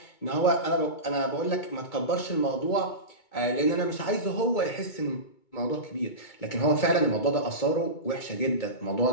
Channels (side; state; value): right; late; 2.2 ms